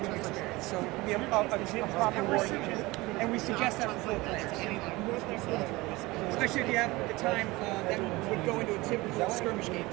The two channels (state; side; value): quieter; left; 21.5 dB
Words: experience. So it can be a proper war unit. And we suggest that for 4 players. Especially if you have the time that would go into a typical skirmish game,